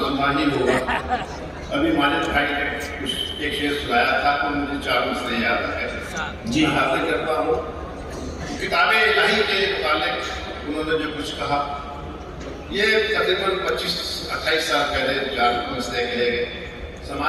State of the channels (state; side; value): identical; both; correlation 1.00